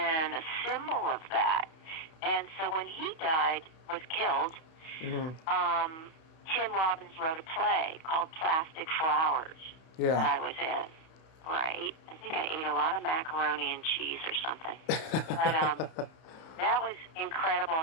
a symbol of that. And so when he was killed, Tim Robbins wrote a play called Plastic Flowers that I was in. Right. I think I ate a lot of macaroni and cheese or something. But that was incredible,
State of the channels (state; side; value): late; right; 31 ms